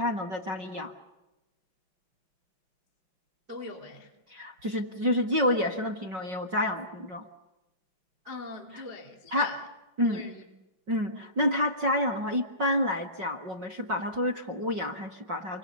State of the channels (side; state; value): left; late; 5.4 ms